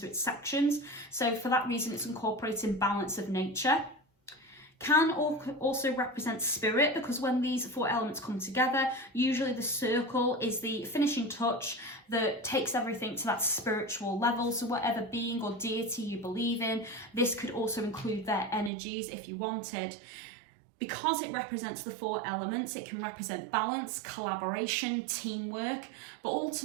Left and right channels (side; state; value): left; drops out; at 18.7 s